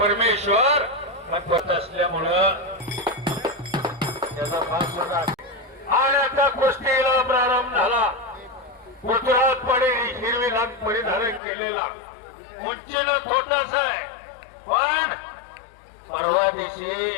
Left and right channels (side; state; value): right; drops out; at 11.4 s